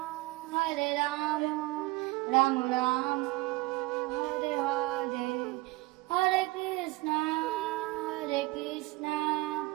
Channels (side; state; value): left; quieter; 21.6 dB